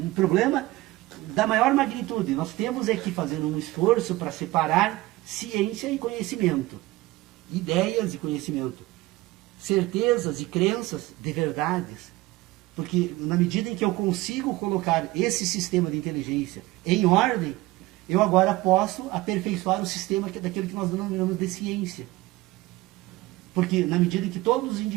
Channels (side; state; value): left; quieter; 18.8 dB